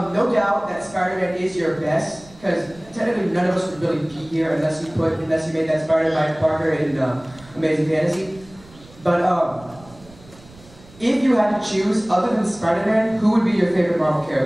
doubt that Spider-Man is your best, because technically none of us would really be here unless you made that Spider-Man Parker in Amazing Fantasy. But if you had to choose, other than Spider-Man, who would be your favorite Marvel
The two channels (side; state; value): right; noise; rumble, 23 dB below the sound